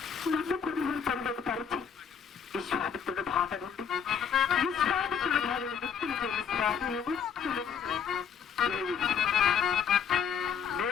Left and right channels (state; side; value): quieter; right; 7.3 dB